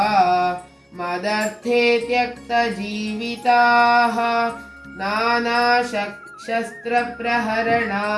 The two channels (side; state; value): both; identical; correlation 1.00